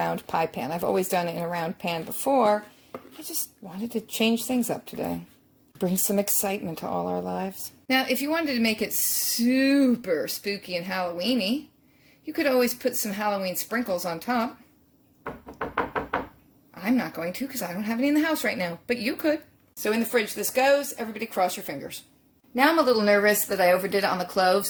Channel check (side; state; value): both; identical; correlation 1.00